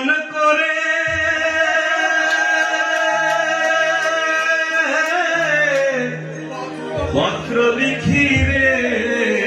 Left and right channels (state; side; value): identical; both; correlation 1.00